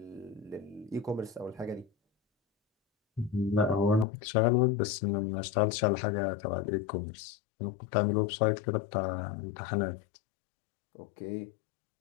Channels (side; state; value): right; drops out; at 4.0 s